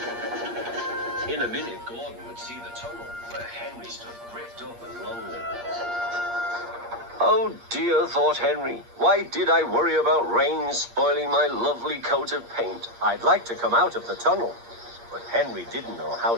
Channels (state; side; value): late; left; 8.5 ms